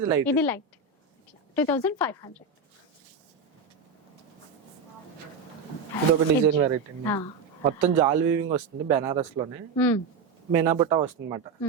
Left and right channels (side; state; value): left; quieter; 4.9 dB